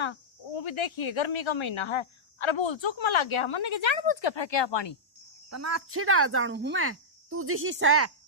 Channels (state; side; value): normal; both; correlation -0.09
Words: वो भी देखिए गर्मी का महीना है। अरे बोल चुक में लग गया मन के जानबूझ के फेंके पानी। तना अच्छी डाल जानू हूं मैं, तू जिसी से